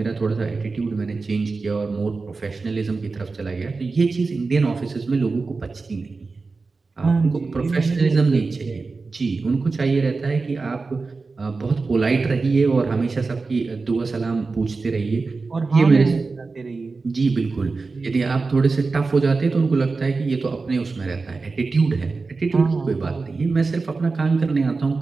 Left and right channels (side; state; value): left; quieter; 4.1 dB